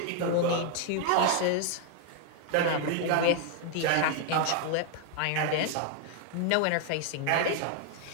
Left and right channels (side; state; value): both; different; correlation 0.00